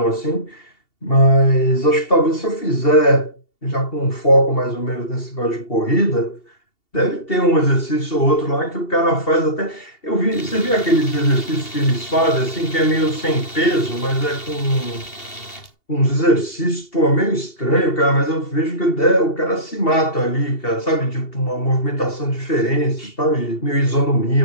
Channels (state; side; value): late; right; 2.7 ms